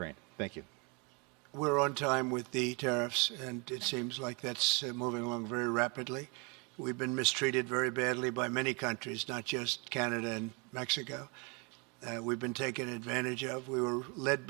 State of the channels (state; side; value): quieter; left; 31.5 dB